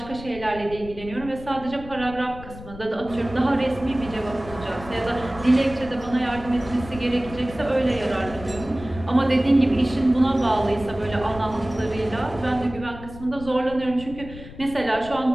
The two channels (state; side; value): noise; left; rumble, 14 dB below the sound